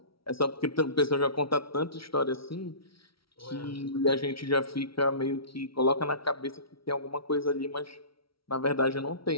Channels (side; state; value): right; late; 0.75 ms